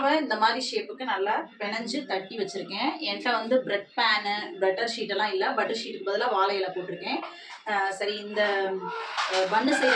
இந்த மாதிரி ஷேப்புக்கு நல்லா பிணைஞ்சு தட்டி வச்சுருக்கேன். என்கிட்ட வந்து பிரெட் பேனு பட்டர் ஷீட்டெல்லாம் இல்லை. பட்டர் ஷீட்டுக்கு பதிலாக வாழை இலை போட்டிருக்கேன். சரி, இந்த பன்னு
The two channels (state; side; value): identical; both; correlation 1.00